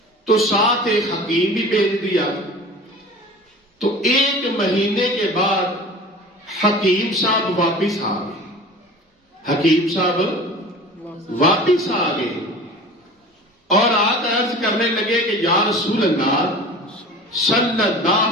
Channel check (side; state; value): both; normal; correlation 0.39